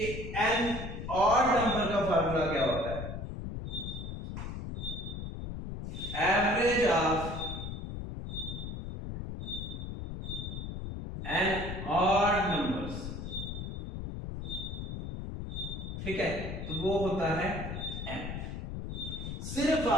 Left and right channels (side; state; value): left; noise; rumble, 6 dB below the sound